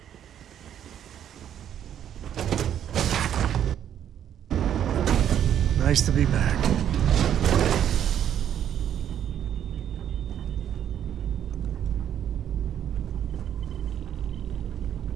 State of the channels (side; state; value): left; quieter; 9.9 dB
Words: Nice to be back.